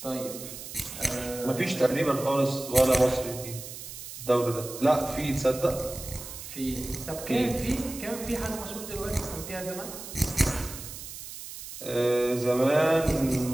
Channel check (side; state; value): right; noise; hiss, 11 dB below the sound